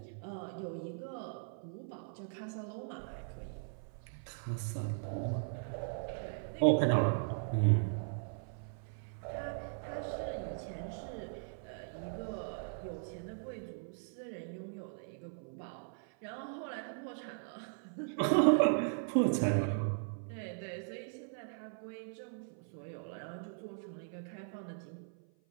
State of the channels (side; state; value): left; silent; 52 dB below the other